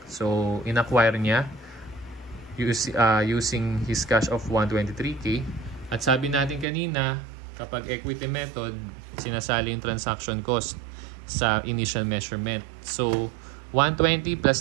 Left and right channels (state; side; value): drops out; left; at 6.7 s